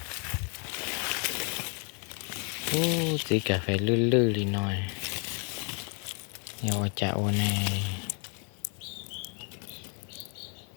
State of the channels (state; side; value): quieter; right; 38.9 dB